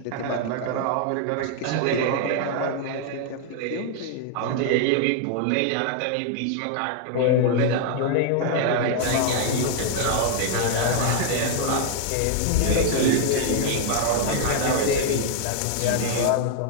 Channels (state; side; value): different; both; correlation 0.00